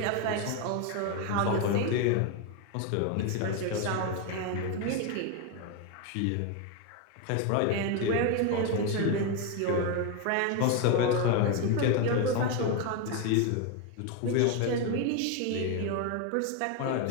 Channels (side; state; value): both; different; correlation 0.02